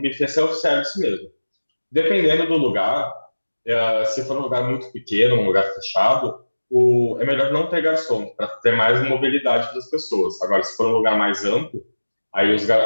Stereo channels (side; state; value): both; inverted; correlation -1.00